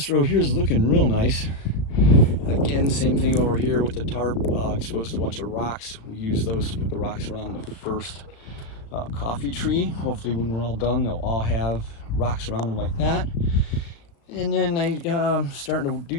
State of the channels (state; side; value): late; right; 36 ms